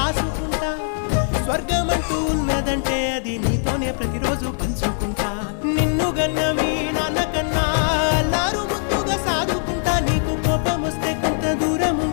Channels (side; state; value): right; silent; digital silence